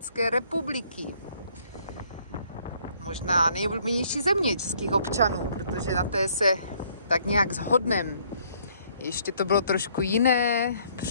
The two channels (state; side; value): inverted; both; correlation -0.64